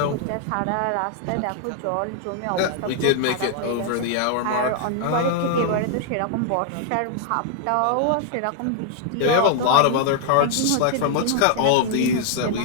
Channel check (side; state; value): both; different; correlation 0.00